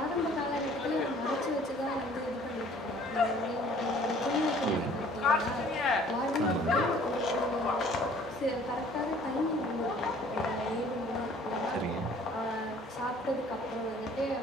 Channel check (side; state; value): both; normal; correlation 0.54